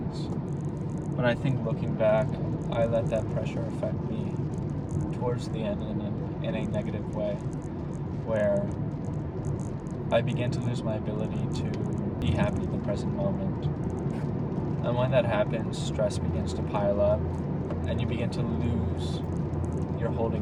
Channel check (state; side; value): identical; both; correlation 1.00